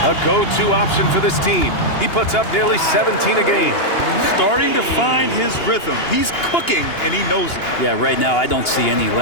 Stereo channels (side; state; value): right; late; 2.8 ms